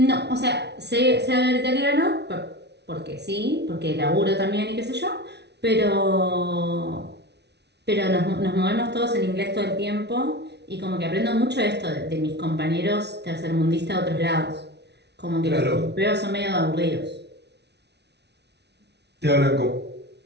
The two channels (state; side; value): late; left; 0.50 ms